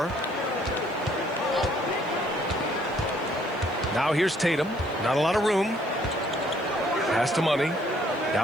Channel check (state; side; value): noise; left; hiss, 28 dB below the sound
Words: Now here's Tatum. Not a lot of room. Pass to Money.